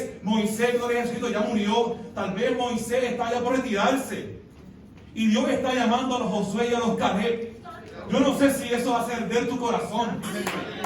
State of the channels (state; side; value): identical; both; correlation 1.00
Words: Moisés, gloria a Jesucristo, ya murió. Tal vez Moisés está ya por retirarse. Y Dios está llamando a los Josué y a los Caleb. Yo no sé si eso va a hacer tu corazón.